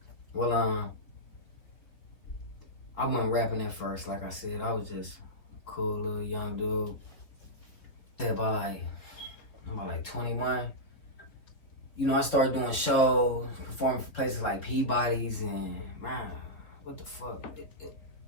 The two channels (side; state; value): right; late; 3.7 ms